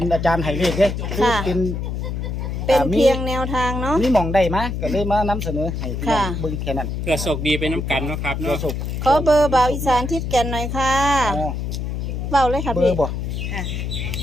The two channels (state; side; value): noise; left; hum, 3 dB below the sound